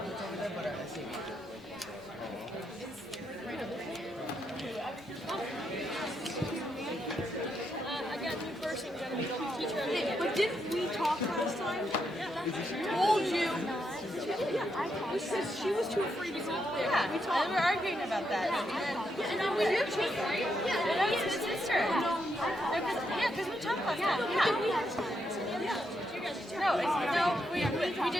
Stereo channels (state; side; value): normal; both; correlation 0.80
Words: over there, but our SAB. But didn't we talk last time? Told you. We said she was too afraid to go up there. Yeah, we talked. and we're arguing about that. And then we do change, right? Yeah, and then it's sister. Yeah, because we talked last time. Yeah. No, we